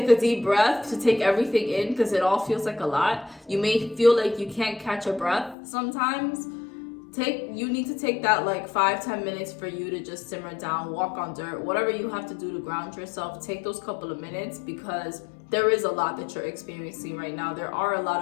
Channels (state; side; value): drops out; right; at 5.6 s